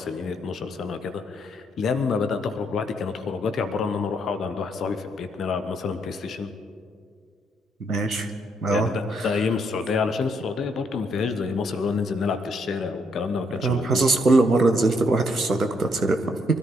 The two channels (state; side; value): normal; both; correlation 0.73